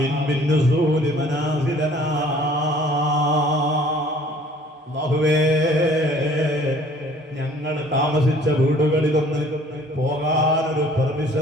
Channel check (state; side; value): normal; both; correlation 0.54